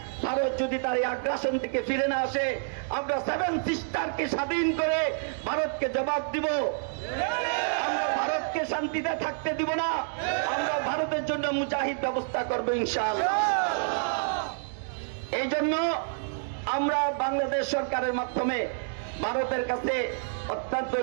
ভারত যদি তার এই আগ্রাসন থেকে ফিরে না আসে, আমরা 7 সিস্টারকে স্বাধীন করে ভারতকে জবাব দিব। আমরা ভারতকে শান্তিতে থাকতে দিব না, আমরা ভারতের জন্য মুজাহিদ ব্যবস্থা করবো ইনশাআল্লাহ। এই জন্য আমরা বাংলাদেশ সরকারের মাধ্যমে ভারতের কাছে অত্যন্ত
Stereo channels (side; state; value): left; silent; 59 dB below the other